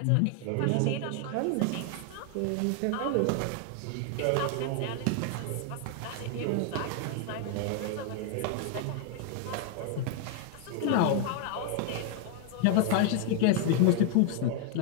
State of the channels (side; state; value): both; different; correlation 0.00